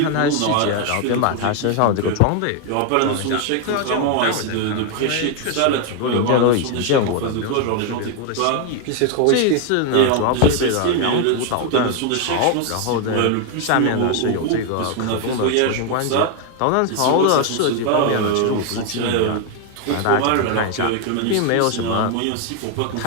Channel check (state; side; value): different; both; correlation 0.01